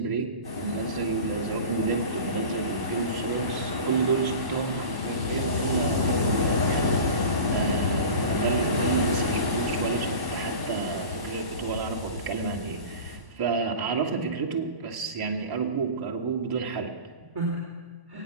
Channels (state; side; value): late; left; 1.1 ms